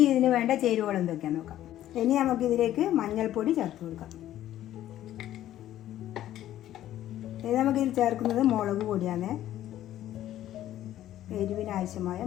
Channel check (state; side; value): quieter; right; 12.8 dB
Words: ഇതിന് വേണ്ട ചേരുവകൾ എന്തൊക്കെയാണെന്ന് നോക്കാം. ഇനി നമുക്ക് ഇതിലേക്ക് മഞ്ഞൾപ്പൊടി ചേർത്ത് കൊടുക്കാം. ഇനി നമുക്കിതിൽ ചേർക്കുന്നത് മുളക് പൊടിയാണ്. എരിവിന് ആവശ്യമായ